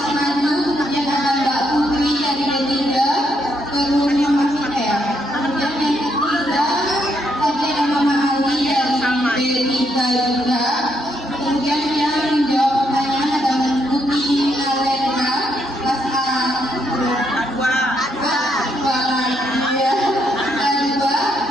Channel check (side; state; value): both; normal; correlation 0.76